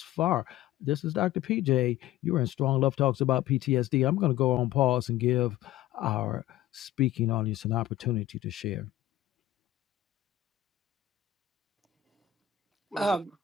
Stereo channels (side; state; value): right; quieter; 12.7 dB